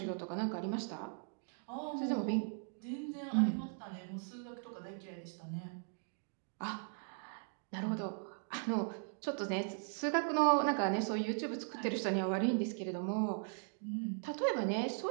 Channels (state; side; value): silent; left; 52 dB below the other